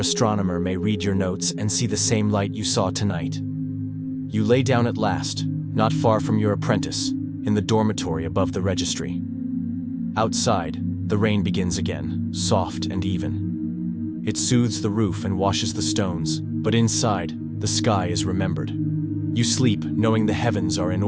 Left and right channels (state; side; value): identical; both; correlation 1.00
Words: may read your notes and see the same light you saw tonight. You lay down at last, not far from your apprentice, in the dormitory above the registry. Outside, the rain begins again, soft and even. It soothes the roof and washes the stones, but inside, the sky is remembered. You sleep, knowing the heavens are in